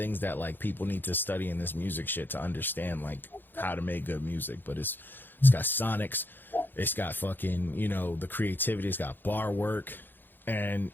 that like people need to study in this music shit to understand like how to make good music. But it's got sonics, it's got fucking the creativity, it's got bar work, and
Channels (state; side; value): late; right; 0.094 ms